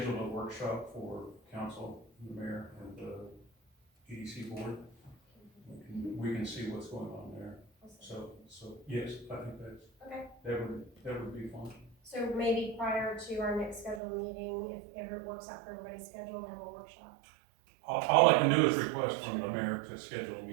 a workshop for council, the mayor, and the EDC board. We can see what's going on there. So yes, I think Okay. that would be fun. So maybe prior to our next scheduled meeting, if ever it works out for everybody's schedule, have a workshop. All I can do is request from the mayor to schedule a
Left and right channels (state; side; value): drops out; left; at 14.0 s